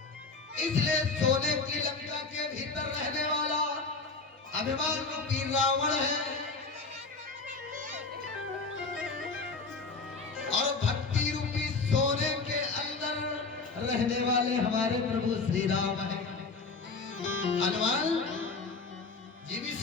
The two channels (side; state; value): right; quieter; 4.1 dB